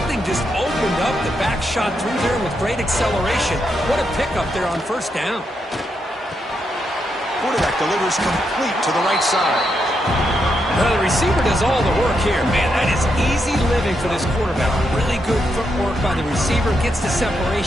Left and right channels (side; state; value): both; normal; correlation 0.82